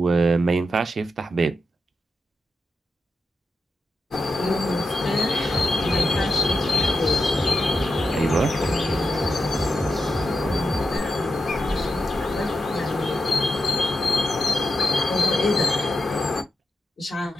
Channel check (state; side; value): normal; both; correlation 0.88